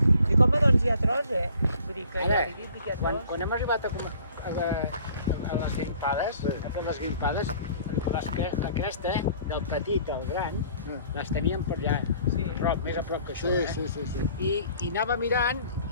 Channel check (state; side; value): inverted; both; correlation -0.53